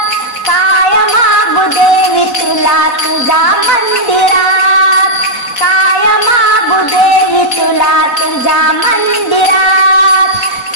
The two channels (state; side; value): late; right; 4.1 ms